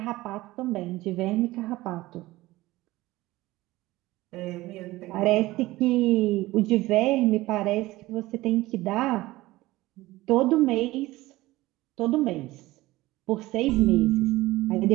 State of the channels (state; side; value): quieter; left; 18.4 dB